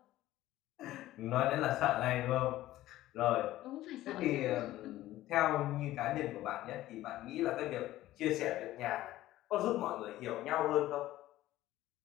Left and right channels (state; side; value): quieter; right; 15.3 dB